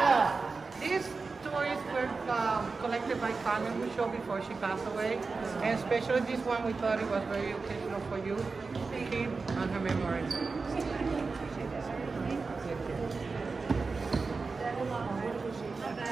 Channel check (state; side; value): quieter; left; 4.3 dB